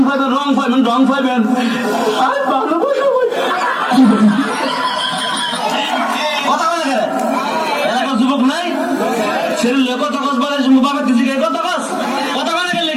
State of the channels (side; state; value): both; identical; correlation 1.00